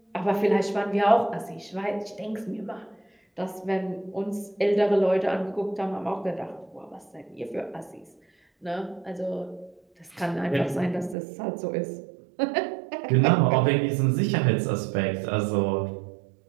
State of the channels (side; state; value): left; drops out; at 11.2 s